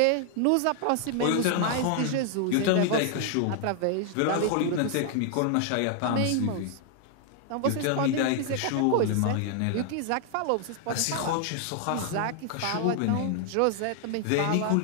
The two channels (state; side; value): different; both; correlation 0.00